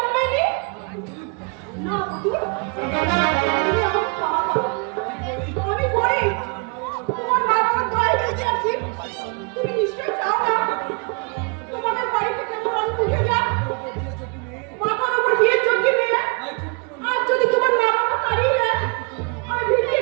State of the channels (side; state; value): left; quieter; 34.7 dB